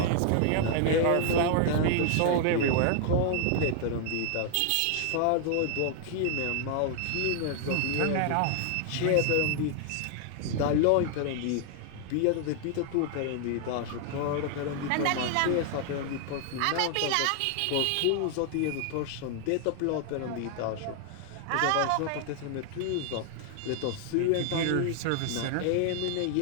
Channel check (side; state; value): both; different; correlation 0.00